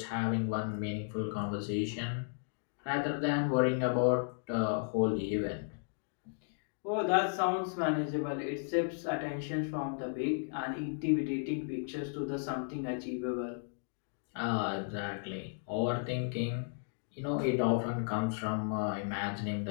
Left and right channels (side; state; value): right; silent; digital silence